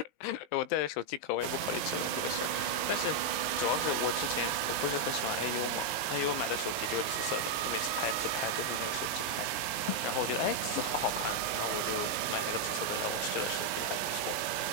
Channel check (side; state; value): right; late; 19 ms